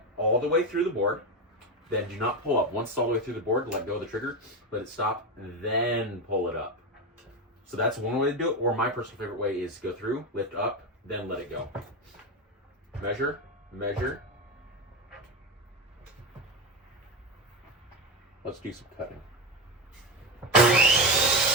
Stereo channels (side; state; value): both; normal; correlation 0.16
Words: all the way through the board. Then do not pull up. Once it's all the way through the board, let go of the trigger, let it stop, then pull it up. So that's one way to do it. Or my personal favorite way is go through, lift up, then let it go. Measure, measure. Let's do some cutting.